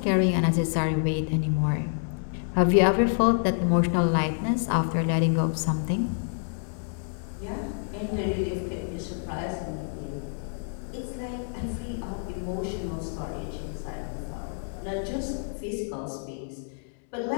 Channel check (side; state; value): right; silent; digital silence